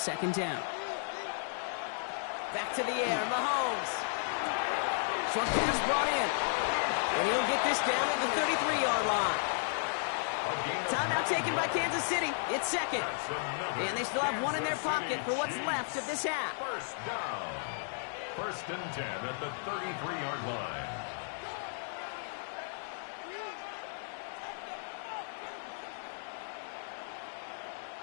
down. Back to the air. Mahomes. Short pass brought in. And he'll get this down at the 33-yard line. Timeout taken by Kansas City. It's 2nd. And they still have 1 in their pocket for what's left of this half. 1st down. 1st and 10 at the 33-yard line.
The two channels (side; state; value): right; silent; digital silence